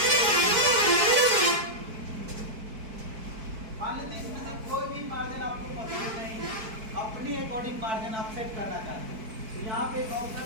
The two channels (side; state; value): left; late; 4.6 ms